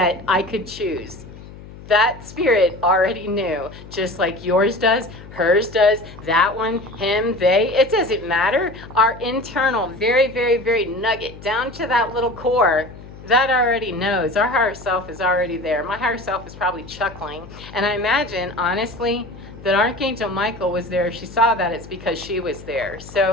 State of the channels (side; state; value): left; noise; hum, 17 dB below the sound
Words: I could choose. That spirit already knew, just like yours does, hers does, that one, him, they. It doesn't matter. Our internal, very, very, very nugget, down to that little core, that already knows. Our higher self is already there. My higher self is probably chuckling. And I imagine, honestly, that Archangel Michael was there. If she saw that, it's because she was there.